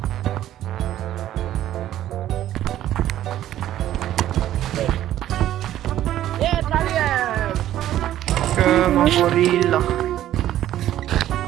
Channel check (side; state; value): left; quieter; 12.7 dB